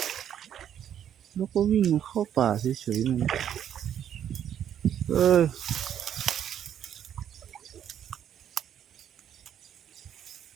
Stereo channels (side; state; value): left; quieter; 9.7 dB